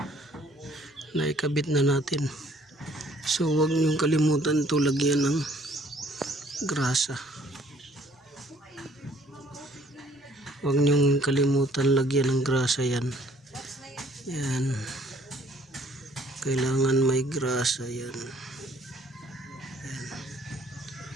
naikabit na natin. So huwag niyong kalimutan to lagyan ng grasa. Huwag niyong kalimutan lagyan ng grasa yan. Yan, kailangan may grasa yan. Yan,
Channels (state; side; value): normal; both; correlation 0.60